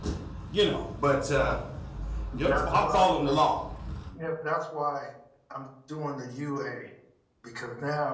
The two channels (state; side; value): identical; both; correlation 1.00